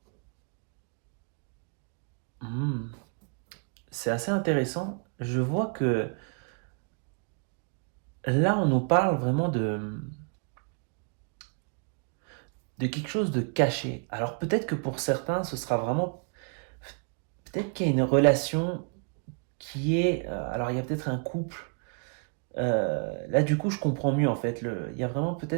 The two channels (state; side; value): quieter; left; 39.7 dB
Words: Hmm, c'est assez intéressant. Je vois que là, on nous parle vraiment de quelque chose de caché. Alors peut-être que pour certains, ce sera vraiment... Peut-être qu'il y a une relation qui est... alors il y a peut-être un couple. Là, du coup, je comprends mieux en fait. Il y a vraiment